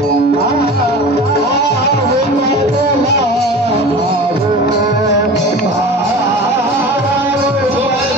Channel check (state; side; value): normal; both; correlation 0.36